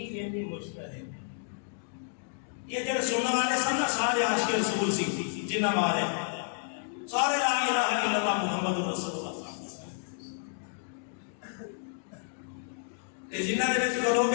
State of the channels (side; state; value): right; silent; digital silence